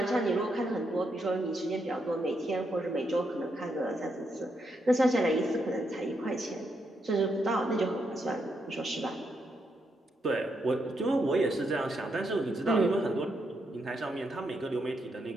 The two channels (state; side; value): normal; both; correlation 0.80